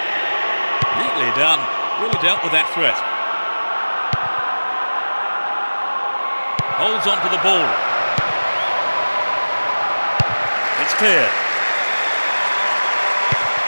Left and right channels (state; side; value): inverted; both; correlation -1.00